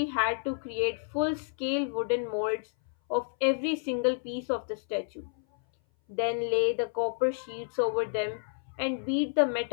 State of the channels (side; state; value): right; silent; 58 dB below the other